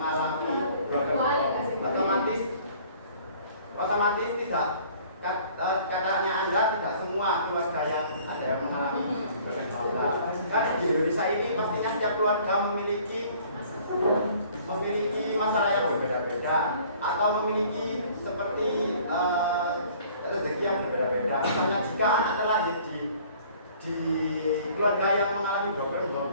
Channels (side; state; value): both; inverted; correlation -0.54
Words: broken home otomatis tidak katanya Anda tidak semua keluarga yang ada yang mengalami bermasalah. Kan di Indonesia ini pastinya setiap keluarga memiliki masalah yang berbeda-beda atau memiliki seperti rezeki yang berbeda-beda. Misalnya jika anak terlahir di keluarga yang mengalami broken